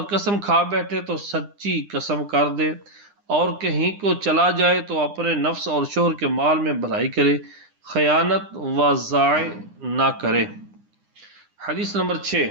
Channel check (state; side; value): late; left; 9.9 ms